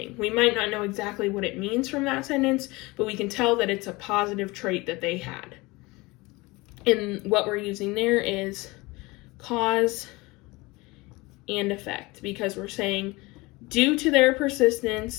We might not know exactly what it means from that sentence, but we can tell that it's a positive trait that they had. And what we're using there is cause and effect, because we're saying due to their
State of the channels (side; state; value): right; quieter; 23.0 dB